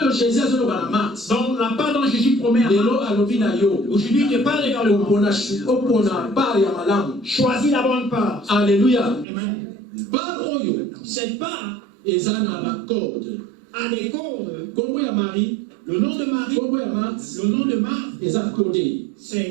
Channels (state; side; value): drops out; left; at 9.2 s